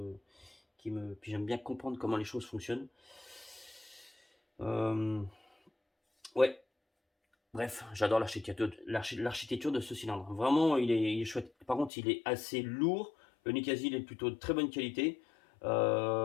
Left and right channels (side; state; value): right; drops out; at 11.9 s